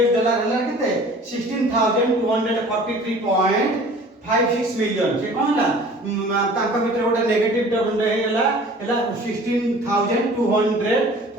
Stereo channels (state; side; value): normal; both; correlation 0.47